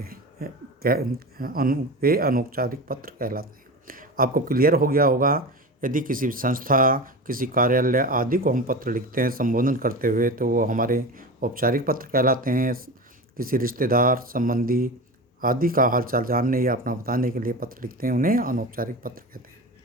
हैं। वे अनौपचारिक पत्र कहलाते हैं। आपको क्लियर हो गया होगा। यदि किसी संस्था, किसी कार्यालय आदि को हम पत्र लिखते हैं संबोधन करते हुए, तो वो हमारे औपचारिक पत्र कहलाते हैं। किसी रिश्तेदार, संबंधी आदि का हालचाल जानने या अपना बताने के लिए पत्र लिखते हैं, उन्हें अनौपचारिक पत्र कहते हैं।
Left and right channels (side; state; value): both; normal; correlation 0.27